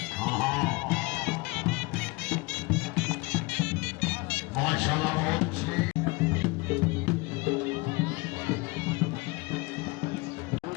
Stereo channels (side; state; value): right; quieter; 25.6 dB